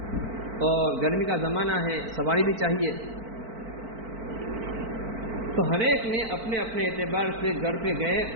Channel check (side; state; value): left; late; 4.5 ms